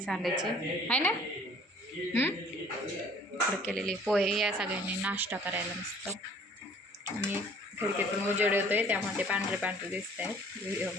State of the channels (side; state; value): both; normal; correlation 0.54